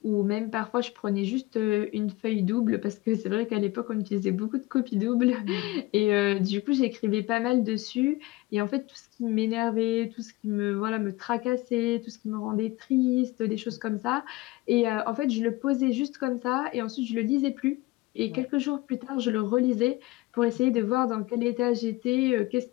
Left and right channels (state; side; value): quieter; right; 19.8 dB